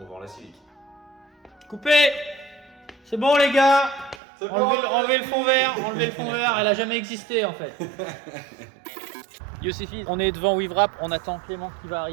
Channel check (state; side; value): drops out; left; at 4.2 s